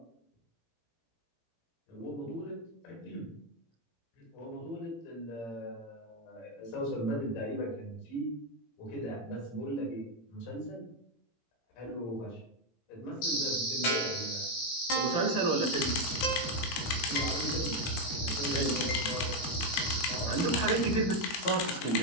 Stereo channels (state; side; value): late; right; 17 ms